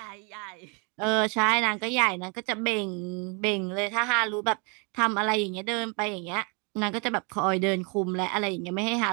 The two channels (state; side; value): quieter; left; 34.0 dB